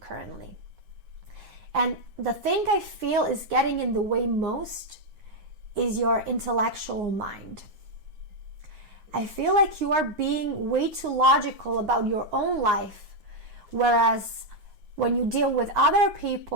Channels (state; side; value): late; left; 9.6 ms